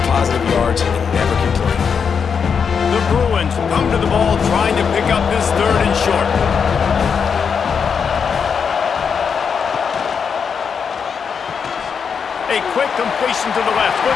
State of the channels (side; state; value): right; quieter; 6.4 dB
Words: positive yards, and never complain. The Bruins come to the ball trying to pick up this 3rd and short. A quick completion to the left,